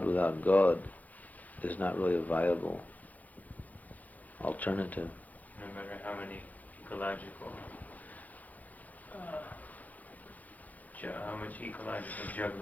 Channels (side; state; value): right; late; 0.079 ms